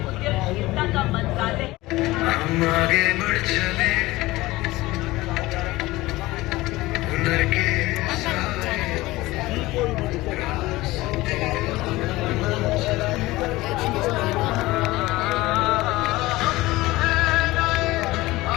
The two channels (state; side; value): quieter; right; 19.2 dB